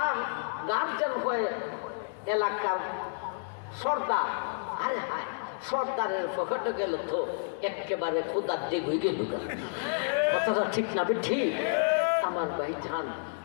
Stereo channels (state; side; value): silent; right; digital silence